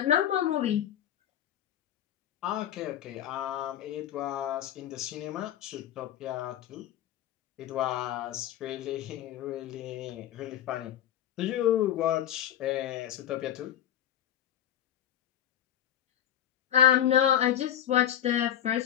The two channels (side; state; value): right; quieter; 10.8 dB